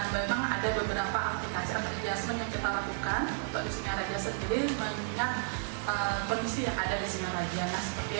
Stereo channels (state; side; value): silent; left; digital silence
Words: memang ada beberapa aplikasi atau adjustment yang kita lakukan untuk di Singaraja sendiri mengingat kondisi yang ada di Singaraja. Nah, seperti